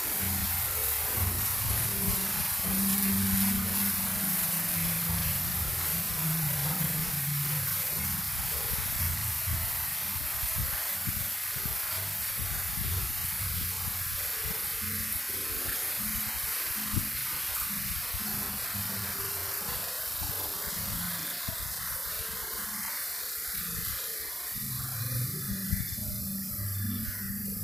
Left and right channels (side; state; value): both; normal; correlation 0.94